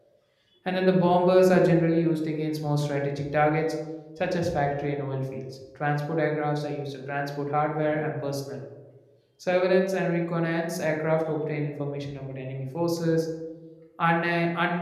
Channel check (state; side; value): identical; both; correlation 1.00